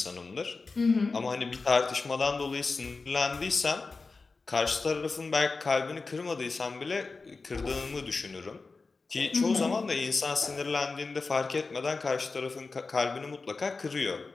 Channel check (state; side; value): quieter; right; 4.0 dB